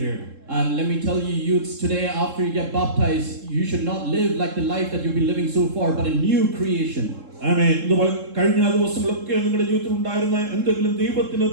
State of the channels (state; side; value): late; left; 3.7 ms